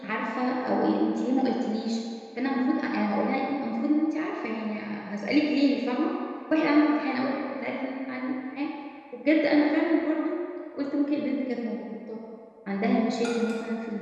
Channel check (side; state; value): both; identical; correlation 1.00